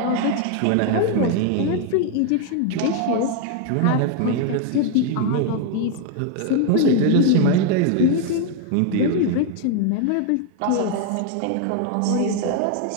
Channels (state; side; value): different; both; correlation 0.00